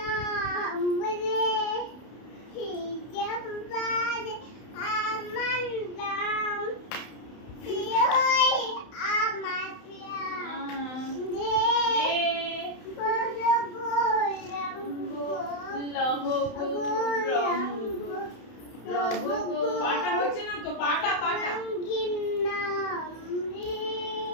লহ গৌরঙ্গ রহ পাটা হচ্ছে না তো পাটা পাটা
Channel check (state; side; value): late; right; 31 ms